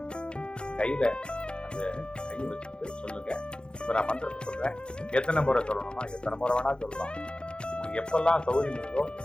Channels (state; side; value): late; right; 0.052 ms